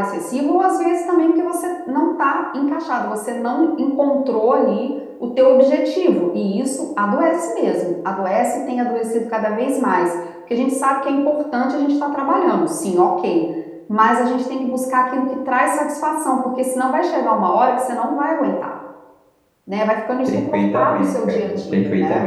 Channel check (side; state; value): both; identical; correlation 1.00